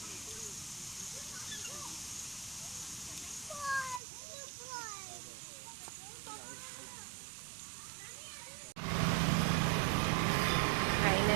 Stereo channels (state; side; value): drops out; left; at 4.0 s